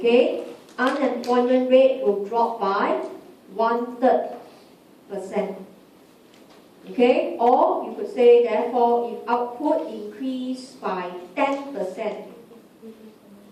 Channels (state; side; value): identical; both; correlation 1.00